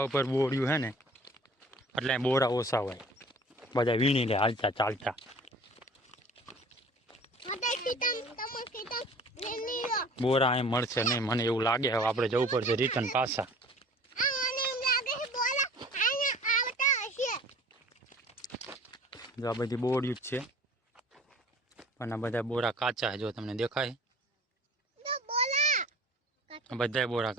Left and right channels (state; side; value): normal; both; correlation 0.47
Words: ઉપર બોર્યું છે ને એટલે બોરા ઓછા હોય, બધા વીણી લે હાલતા ચાલતા. બોરા અહીં મળશે નહીં મને એવું લાગે. હવે આપણે જવું પડશે રિટર્ન પાછા. જો આ બધી બોર્યું જ છે પણ આ બધા બોરા કાચા છે. જો તમને દેખાય બધા બોરા